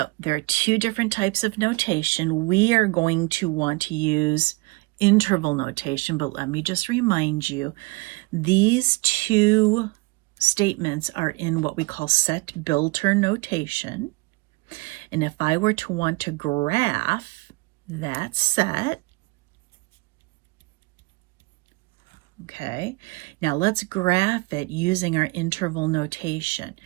there are two different types of notation. We are going to want to use interval notation, but let me just remind you, these two statements are in what we call set builder notation. And if I were to want to graph that set, okay, now let's graph it using our interval notation.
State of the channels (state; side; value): quieter; left; 25.7 dB